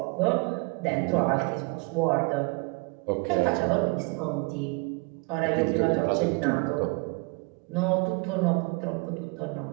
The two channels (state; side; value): quieter; left; 30.0 dB